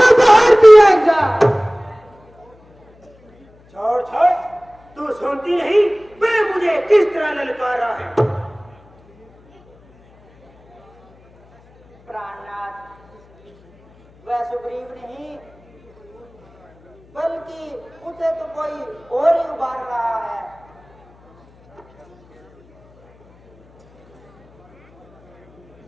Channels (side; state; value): left; noise; hum, 30 dB below the sound